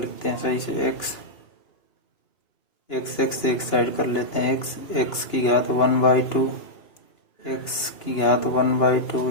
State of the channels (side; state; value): right; late; 2.9 ms